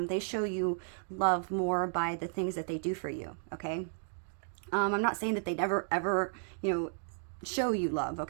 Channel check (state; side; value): silent; left; digital silence